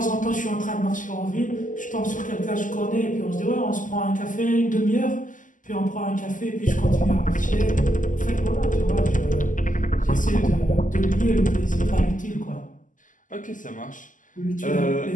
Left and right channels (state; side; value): late; right; 0.38 ms